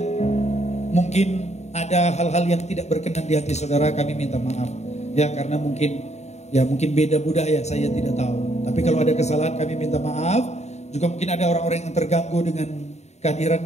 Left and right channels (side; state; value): right; late; 0.32 ms